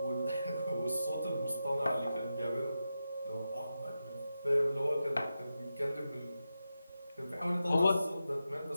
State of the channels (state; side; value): inverted; both; correlation -0.90